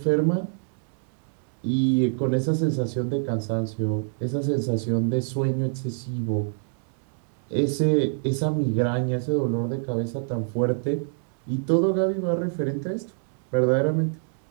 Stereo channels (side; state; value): left; silent; digital silence